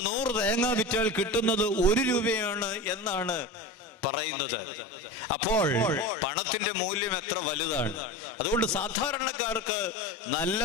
100 തേങ്ങ വിറ്റാൽ കിട്ടുന്നത് 1 രൂപയാണ് എന്നാണ് പറയുന്നത്. അപ്പോൾ പണത്തിന്റെ മൂല്യം എത്ര വലുതാണ്. അതുകൊണ്ട് സാധാരണക്കാർക്ക് നല്ല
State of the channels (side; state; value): both; normal; correlation 0.28